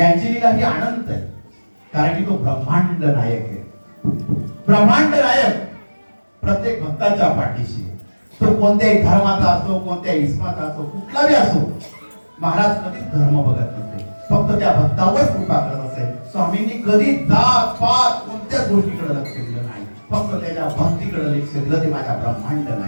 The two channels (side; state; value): both; inverted; correlation -1.00